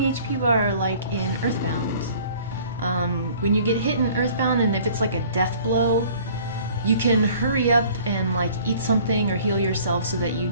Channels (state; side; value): inverted; both; correlation -0.51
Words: bar like in Earthbound. When you get hit in Earthbound and if it's like a death blow, you can hurry up and like eat something or heal yourself so that you